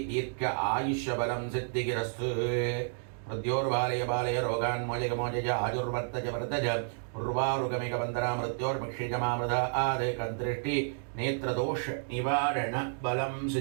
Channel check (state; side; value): silent; left; digital silence